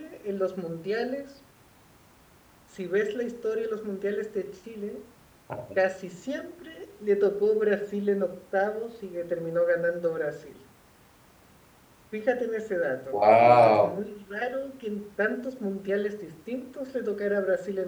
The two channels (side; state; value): both; identical; correlation 1.00